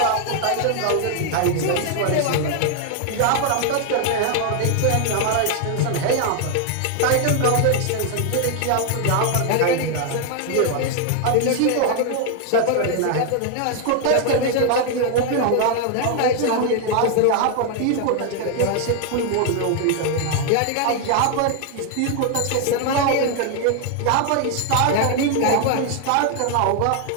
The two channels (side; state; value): both; different; correlation 0.00